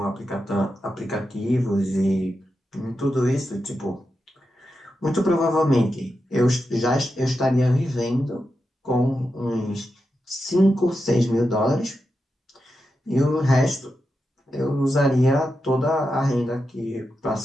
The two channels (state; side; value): normal; both; correlation 0.88